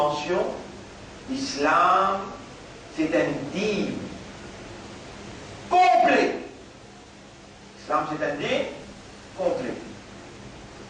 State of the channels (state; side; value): identical; both; correlation 1.00